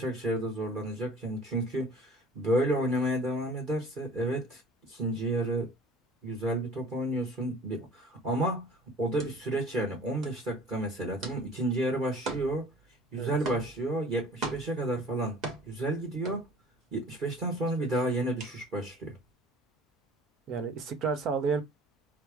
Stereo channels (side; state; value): both; normal; correlation 0.48